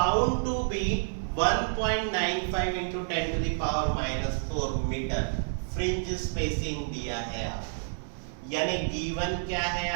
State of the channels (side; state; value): left; silent; 57 dB below the other